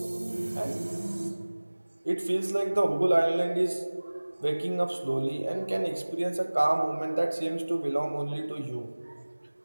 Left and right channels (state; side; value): inverted; both; correlation -1.00